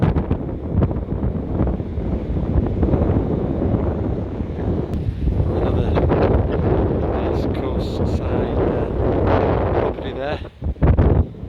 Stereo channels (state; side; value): identical; both; correlation 1.00